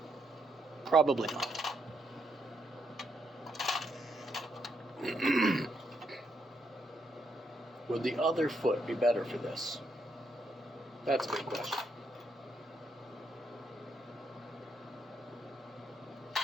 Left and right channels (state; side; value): normal; both; correlation 0.78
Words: Probably not. Would the other foot be better for this? That's a big question.